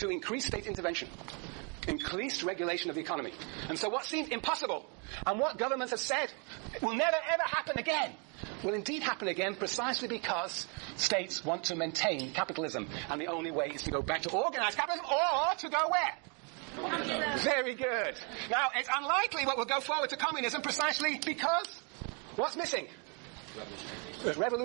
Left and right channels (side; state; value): left; quieter; 35.8 dB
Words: increased state intervention, increased regulation of the economy. And so what seemed impossible, and what governments have said will never ever happen again, will indeed happen again precisely because states want to maintain capitalism. And the only way is to go back to organized capitalism, or to go where? Very good. Now, it's unlikely what will go forward to communism precisely because what's missing? The